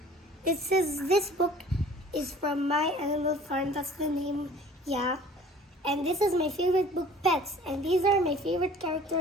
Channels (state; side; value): normal; both; correlation 0.49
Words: this book is from My Animal Farm, that's the name, yeah. And this is my favorite book, Pets, and these are my favorite